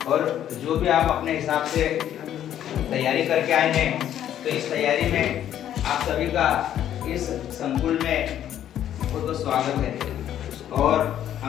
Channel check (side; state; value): right; quieter; 10.8 dB